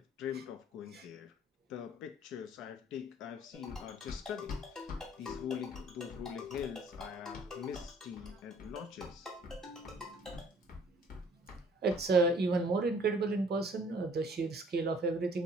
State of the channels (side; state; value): both; normal; correlation 0.57